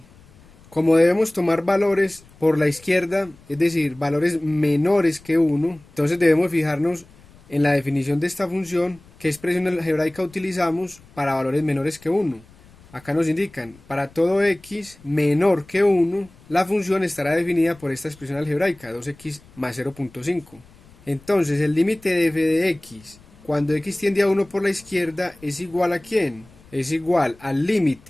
Como debemos tomar valores por la izquierda, es decir, valores menores que 1, entonces debemos fijarnos en la definición de esta función qué expresión algebraica utilizamos para valores menores que 1. Acá nos indican, para todo x menor que 1, la función estará definida por esta expresión algebraica, 2x más 0.5. Entonces el límite de f de x cuando x tiende a 1 por la izquierda es igual a ¿quién? Es igual al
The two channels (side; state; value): left; noise; rumble, 26 dB below the sound